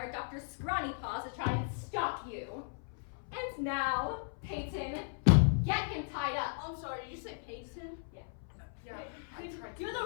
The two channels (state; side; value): silent; right; 54 dB below the other